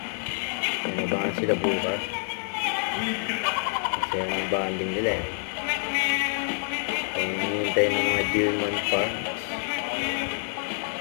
Nabangan sila bukas. Kasi ang banding nila eh. Kung hinihintay ng mga Gilman fans.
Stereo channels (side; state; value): right; silent; 60 dB below the other